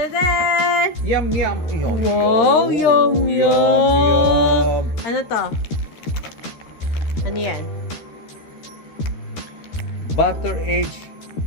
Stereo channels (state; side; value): late; right; 13 ms